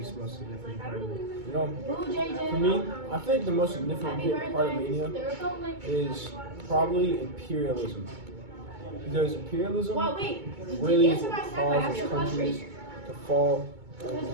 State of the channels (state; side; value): late; left; 2.2 ms